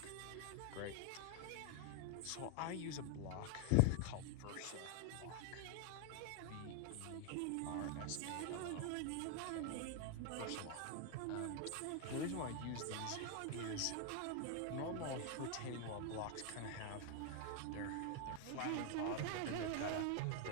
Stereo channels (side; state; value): both; different; correlation 0.00